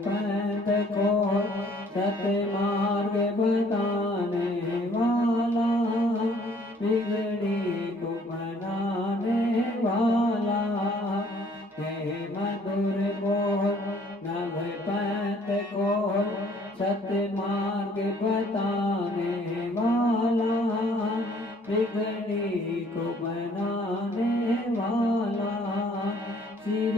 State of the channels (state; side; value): normal; both; correlation 0.59